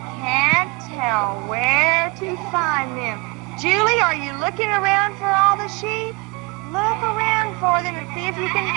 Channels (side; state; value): left; quieter; 26.5 dB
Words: can't tell where to find them. Julie, are you looking around for all the sheep? Look around for them and see if you can